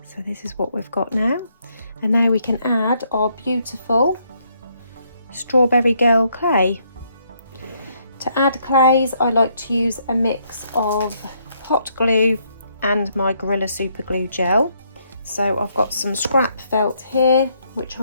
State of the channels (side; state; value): both; inverted; correlation -0.72